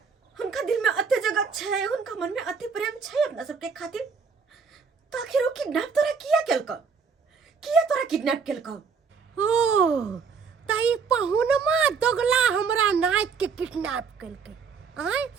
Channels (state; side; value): quieter; left; 5.6 dB